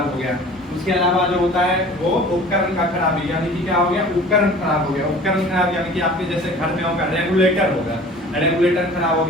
हो गया। उसके अलावा जो होता है वो उपकरण का खराबी, यानी कि क्या हो गया, उपकरण खराब हो गया। उपकरण खराब यानी कि आपके जैसे घर में होगा रेगुलेटर होगा, रेगुलेटर खराब हो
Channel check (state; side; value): normal; both; correlation 0.44